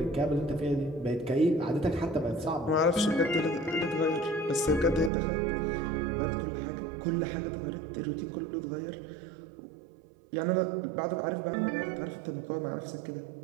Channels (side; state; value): left; drops out; at 5.1 s